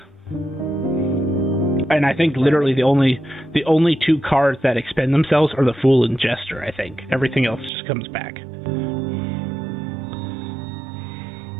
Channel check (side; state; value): left; drops out; at 7.7 s